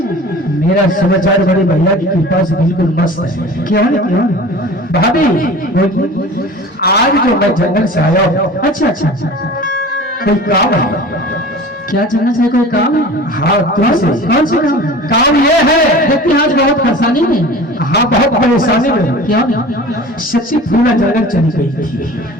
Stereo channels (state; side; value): normal; both; correlation 0.39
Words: मेरा समाचार बड़े भैया की कृपा से बिल्कुल मस्त है। क्यों क्यों? भाभी आज जो मैं जंगल से आया हूँ, अच्छा अच्छा अच्छा, कोई काम है? क्या जंगल से कोई काम है? हाँ तुमसे। कौन सा काम है? काम ये है, देखते हैं आज बहुत परेशानी में। हाँ बहुत परेशानी में। क्या? सच्ची फूला जंगल चली गई थी।